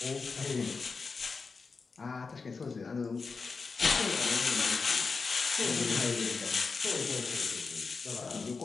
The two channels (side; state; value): right; quieter; 4.6 dB